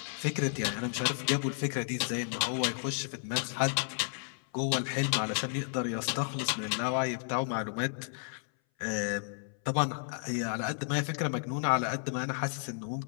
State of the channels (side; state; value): right; silent; 56 dB below the other